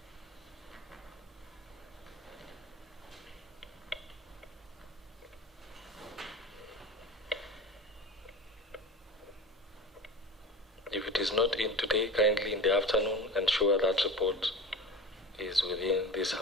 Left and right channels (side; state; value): both; normal; correlation 0.34